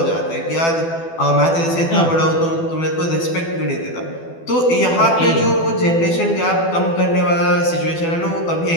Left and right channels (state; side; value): late; right; 12 ms